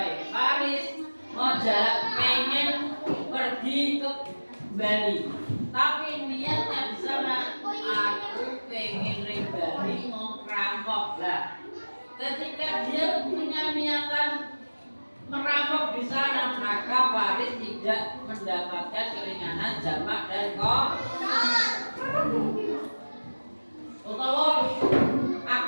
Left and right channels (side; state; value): both; inverted; correlation -1.00